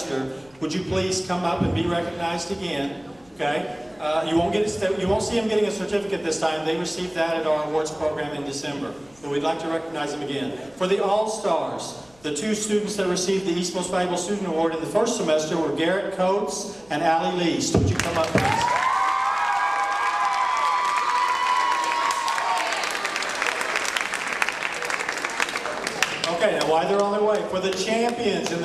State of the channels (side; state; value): left; noise; rumble, 30 dB below the sound